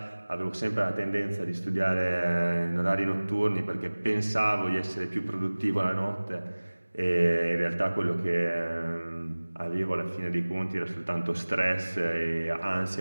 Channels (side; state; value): both; inverted; correlation -1.00